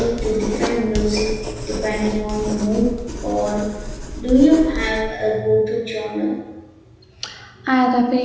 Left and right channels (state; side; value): identical; both; correlation 1.00